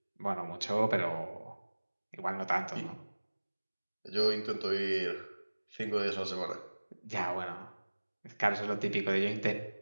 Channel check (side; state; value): both; inverted; correlation -1.00